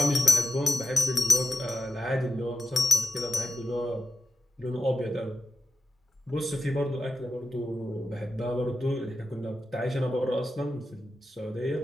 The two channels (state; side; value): normal; both; correlation 0.92